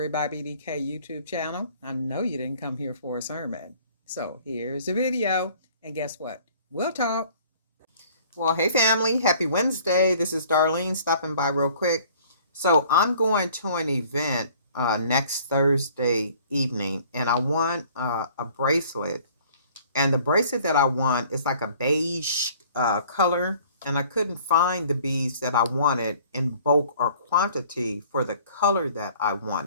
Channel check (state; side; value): inverted; both; correlation -0.54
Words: by BDK YouTube channel. I know you didn't come here for a sermon. So here's the video. And guess what? We'll talk. Well, hey family, happy Wednesday. This is Darlene stopping by real quick. So I'm going to an event next Thursday evening, and I want a bracelet. And the bracelet that I want is like a beige color. And I couldn't find the beads that I wanted in bulk or quantity for the color that I